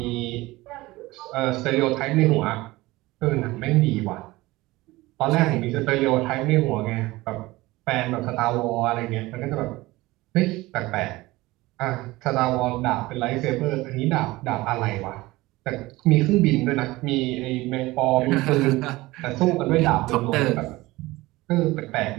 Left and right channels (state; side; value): quieter; left; 19.8 dB